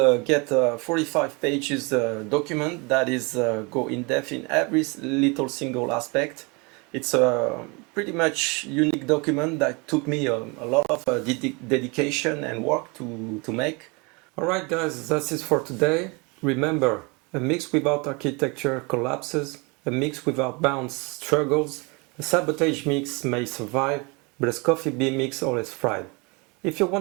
get a 45 pages document that is go in depth in every little single aspect. It's a pretty much unique document that took me a lot of dedication and work to make. Alright guys, that's it for today. Remember, a mix without architecture collapses, a mix without bounds struggles, a sabotage mix may survive, but a SKOFI B mix always thrives. If you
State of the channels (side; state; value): left; quieter; 29.1 dB